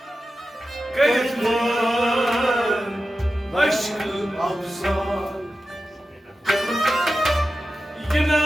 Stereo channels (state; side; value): normal; both; correlation 0.93